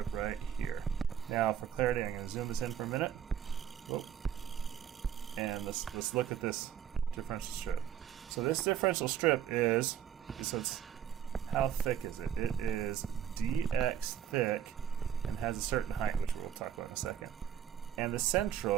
right here. Now, for clarity, I'm going to zoom this in for a minute. And let's look at this differential strip. So this differential strip is, how thick is it? It is dx thick and has a certain height, which we'll talk about in a second. And the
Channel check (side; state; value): left; quieter; 9.4 dB